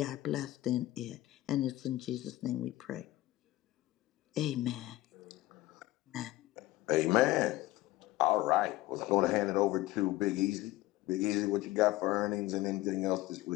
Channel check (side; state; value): right; quieter; 17.2 dB